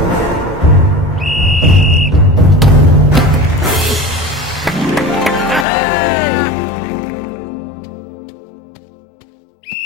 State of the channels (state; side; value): drops out; right; at 5.7 s